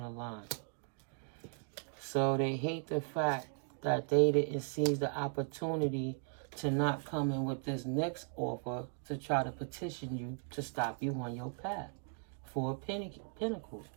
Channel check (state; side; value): silent; left; 53 dB below the other